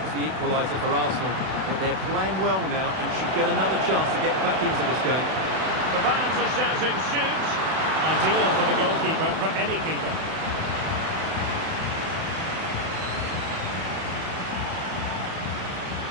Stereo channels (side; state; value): left; late; 32 ms